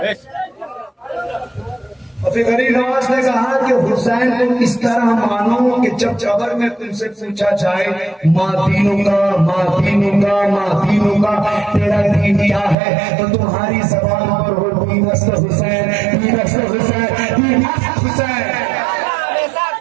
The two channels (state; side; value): drops out; left; at 12.8 s